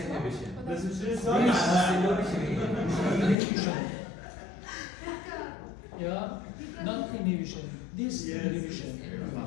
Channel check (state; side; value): drops out; right; at 3.4 s